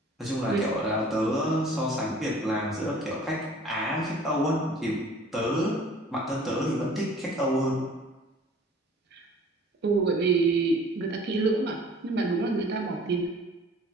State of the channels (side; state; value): both; normal; correlation 0.50